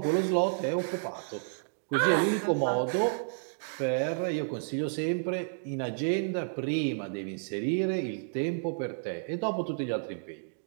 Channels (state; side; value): silent; left; digital silence